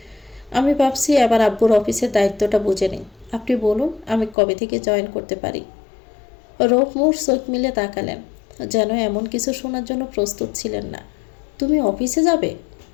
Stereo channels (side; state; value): right; drops out; at 4.4 s